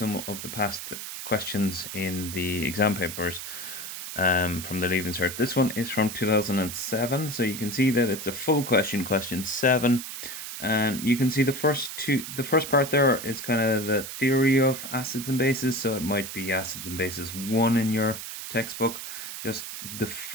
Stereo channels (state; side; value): noise; right; hiss, 8 dB below the sound